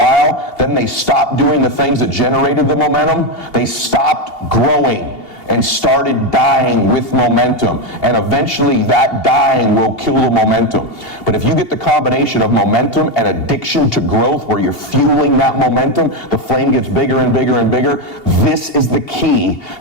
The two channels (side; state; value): right; late; 2.8 ms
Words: then they stopped doing the things that generated the momentum. They stopped growing and started dying with momentum. And eventually that dying will kill the momentum. But if you get the combination of momentum and addiction to growth where you're fueling that momentum, the flame gets bigger and bigger and bigger. This is the key